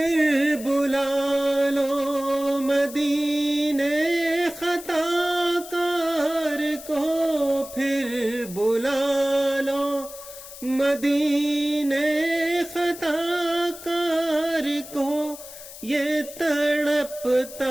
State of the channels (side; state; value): left; noise; hiss, 15 dB below the sound